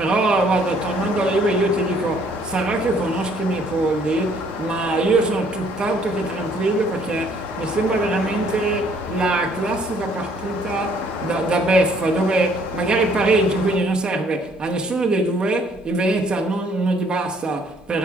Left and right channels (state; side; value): normal; both; correlation 0.63